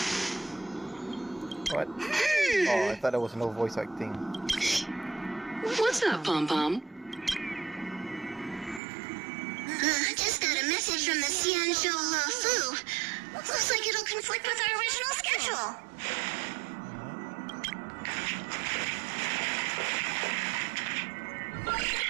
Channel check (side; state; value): left; drops out; at 8.8 s